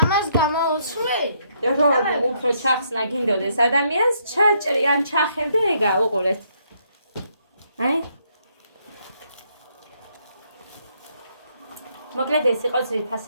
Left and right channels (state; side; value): inverted; both; correlation -0.72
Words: ამას გამოუცვლი? რომ უფრო ჩახსნა გინდოდეს ადამიანს, ჩაჭრი ან ჩახევდა ეგა, უყურეთ. აი. მოკლედ ეს იყო